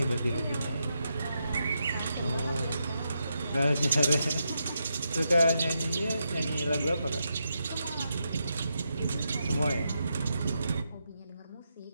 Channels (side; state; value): both; inverted; correlation -0.84